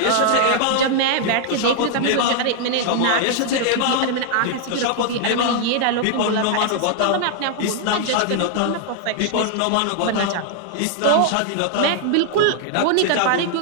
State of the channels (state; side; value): different; both; correlation 0.00